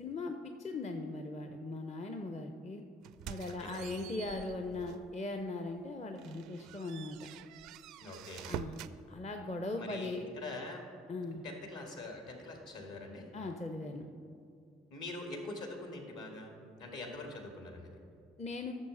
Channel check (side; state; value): both; normal; correlation 0.55